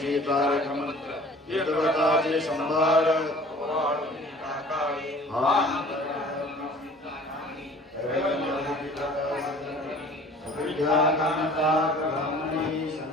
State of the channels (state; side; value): normal; both; correlation 0.48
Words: तारक मंत्र देवताचे संभार